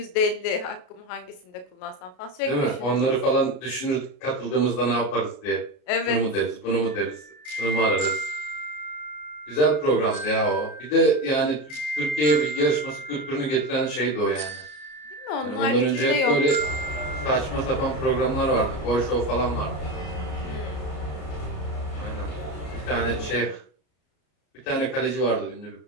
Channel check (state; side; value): late; right; 33 ms